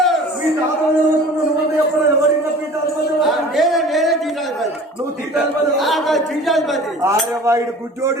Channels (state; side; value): normal; both; correlation 0.44